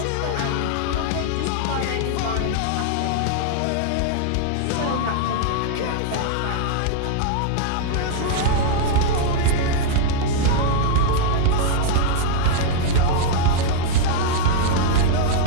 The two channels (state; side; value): different; both; correlation -0.01